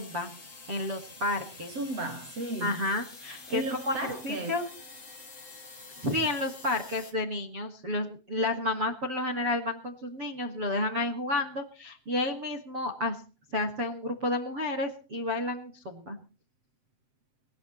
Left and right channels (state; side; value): late; left; 7.7 ms